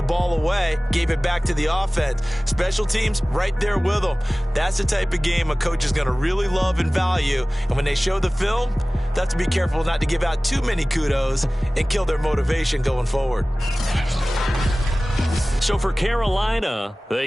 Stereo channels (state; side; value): normal; both; correlation 0.98